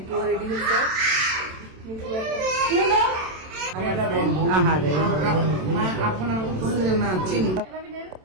রেডি হচ্ছে। আহারে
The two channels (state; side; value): late; left; 27 ms